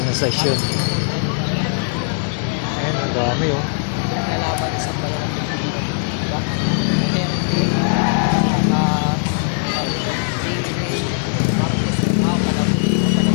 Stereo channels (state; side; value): silent; right; digital silence